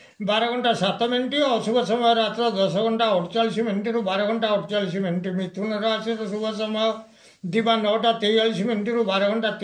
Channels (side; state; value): both; identical; correlation 1.00